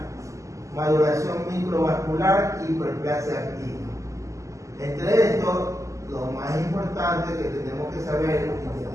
maduración microvascular y hiperplasia activa. Entre estos, lo más importante que tenemos que saber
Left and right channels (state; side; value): late; left; 0.15 ms